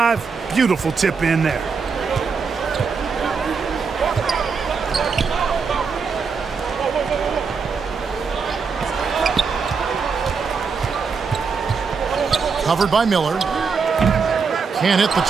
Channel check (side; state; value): left; quieter; 5.4 dB